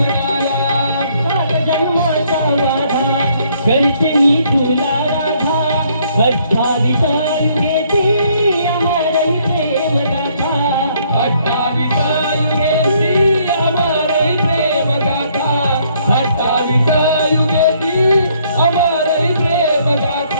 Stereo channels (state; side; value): inverted; both; correlation -0.66